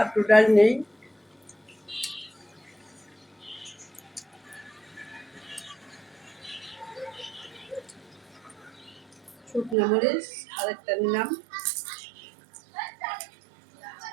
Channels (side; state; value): left; drops out; at 9.8 s